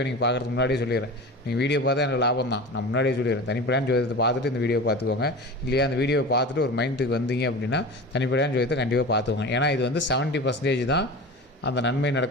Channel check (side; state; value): both; normal; correlation 0.32